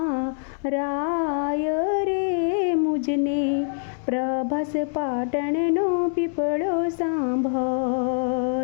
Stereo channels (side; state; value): right; silent; 62 dB below the other